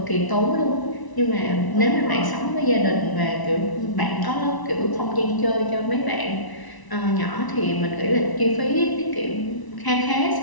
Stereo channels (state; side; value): late; right; 1.0 ms